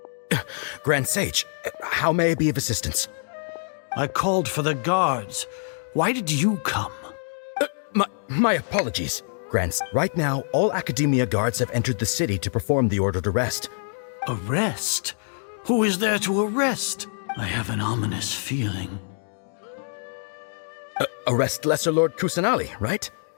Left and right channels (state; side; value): silent; right; digital silence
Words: Grand Sage, how may I be of assistance? I called for the guards. Why did you come? My apologies, Grants. Right now, all Academia guards have entered the city to perform the ordered arrest. Arrest? Who is there to arrest? I have an ominous feeling. Arrest Lesser Lord Kusanali, right?